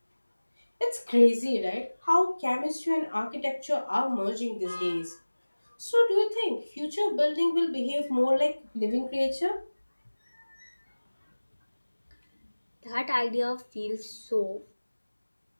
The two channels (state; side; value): inverted; both; correlation -1.00